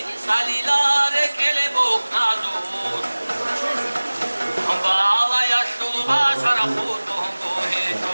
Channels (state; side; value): inverted; both; correlation -1.00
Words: Salilare kelebok nazur Bala yaşlı başara kurdum